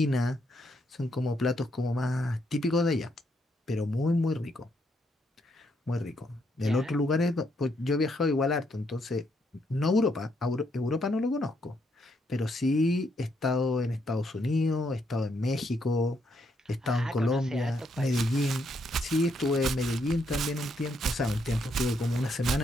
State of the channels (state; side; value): normal; both; correlation 0.75